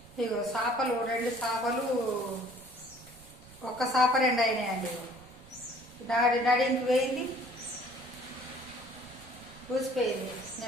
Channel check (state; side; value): noise; right; rumble, 22 dB below the sound